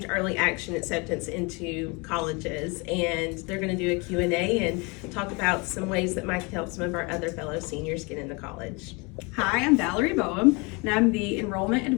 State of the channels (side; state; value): right; quieter; 29.1 dB